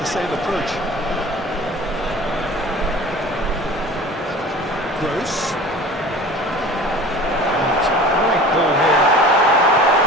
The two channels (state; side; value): normal; both; correlation 0.41